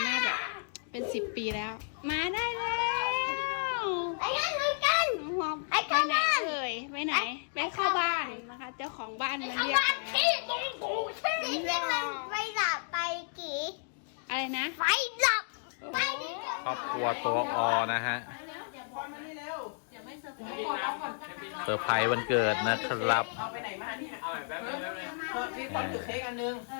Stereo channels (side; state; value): right; silent; digital silence